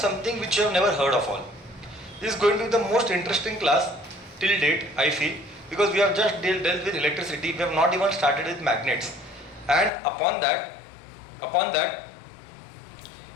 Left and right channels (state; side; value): drops out; right; at 9.9 s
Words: which you have never heard of all. This is going to be the most interesting class till date, I feel, because we have just dealt with electricity. We have not even started with magnets, and upon that